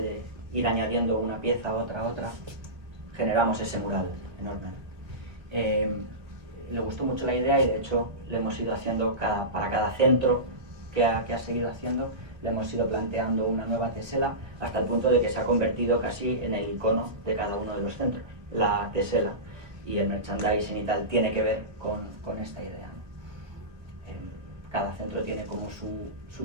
de ir añadiendo una pieza, otra, generamos ese mural enorme. Le gustó mucho la idea, y de hecho le hemos ido haciendo para cada centro que ha seguido haciendo, le hemos ido planteando una nueva tesela, hasta el punto de que se ha convertido casi en el icono de cada uno de los centros. La tesela y el merchandising y tal tiene que ver con esta idea, ¿no? Cada centro tiene como su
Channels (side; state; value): left; late; 1.5 ms